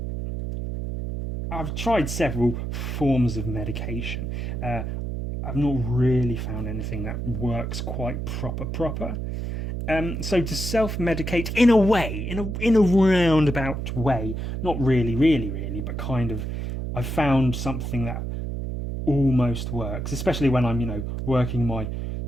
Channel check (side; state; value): right; noise; hum, 4 dB below the sound